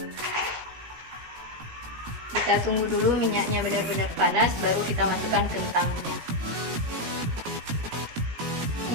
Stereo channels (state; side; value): late; left; 17 ms